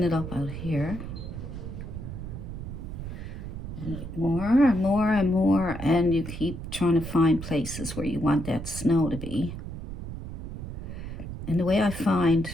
it up out here. More and more and more, and you keep trying to find places where you want that snow to be. And the way I find,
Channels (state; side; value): noise; right; rumble, 8 dB below the sound